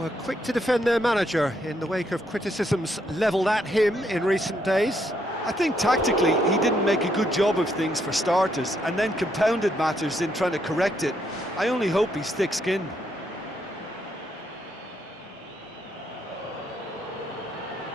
quick to defend their manager in the wake of criticisms levelled at him in recent days. I think tactically he didn't make a good job of things for starters, and then compounded matters in trying to correct it. I only hope he's thick-skinned.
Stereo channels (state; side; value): normal; both; correlation 0.75